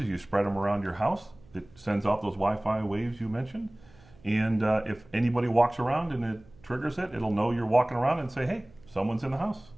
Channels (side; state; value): right; noise; hum, 26 dB below the sound